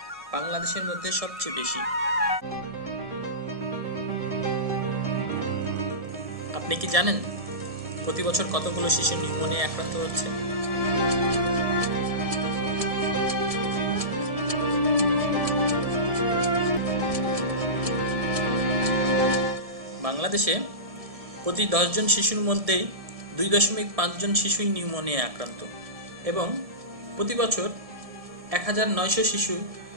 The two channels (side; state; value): left; late; 1.7 ms